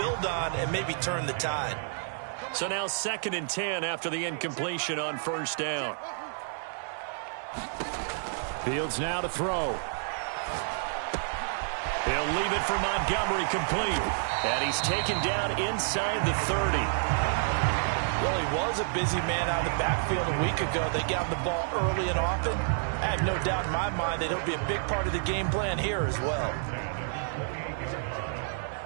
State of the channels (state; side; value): silent; left; 58 dB below the other